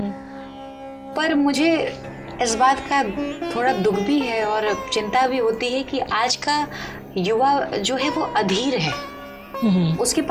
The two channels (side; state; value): both; identical; correlation 1.00